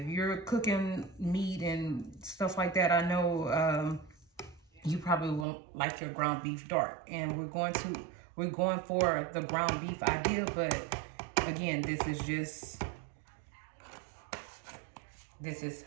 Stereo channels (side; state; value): left; drops out; at 5.5 s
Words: you're cooking meat and stuff like that, I know you probably won't like your ground beef dark. And we're going for the ground beef idea, but again, this is